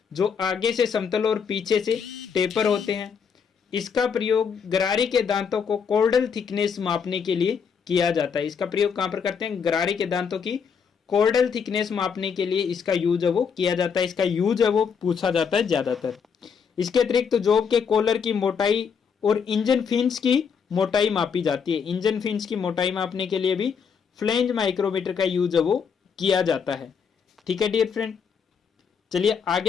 जो आगे से समतल और पीछे से टेपर होते हैं। इसका प्रयोग गरारी के दांतों को कॉर्डल थिकनेस मापने के लिए किया जाता है। इसका प्रयोग कहाँ पर करते हैं, गरारी के दांतों की कॉर्डल थिकनेस मापने के लिए इसका यूज है वो किया जाता है। इसका यूज है वो पूछा जाता है ज्यादातर। इसके अतिरिक्त तो जॉब के कॉलर की मोटाई और इंजन फिन्स की मोटाई मापी जाती है। इंजन फिन्स की मोटाई मापने के लिए भी फ्लेंज माइक्रोमीटर का यूज है वो किया जाता है। ठीक है डियर फ्रेंड, चलिए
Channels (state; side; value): quieter; right; 6.5 dB